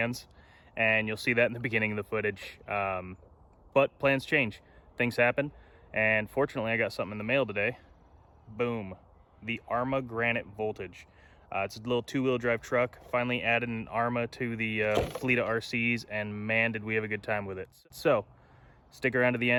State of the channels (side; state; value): both; identical; correlation 1.00